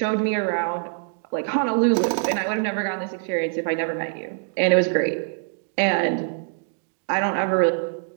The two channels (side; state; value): left; silent; digital silence